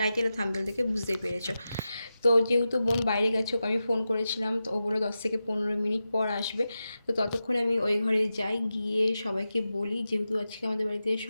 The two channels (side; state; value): both; inverted; correlation -0.92